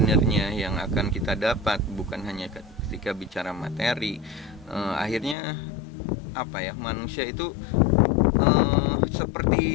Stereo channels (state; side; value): drops out; right; at 5.4 s